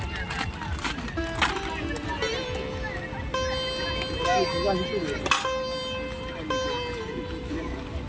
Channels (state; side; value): identical; both; correlation 1.00